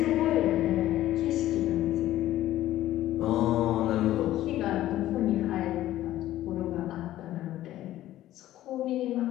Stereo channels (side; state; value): right; quieter; 14.2 dB